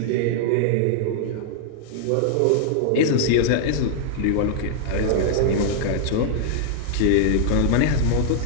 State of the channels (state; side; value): different; both; correlation -0.01